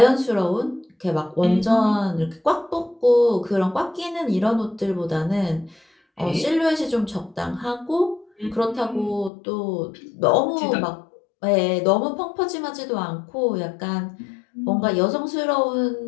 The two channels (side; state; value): right; drops out; at 9.3 s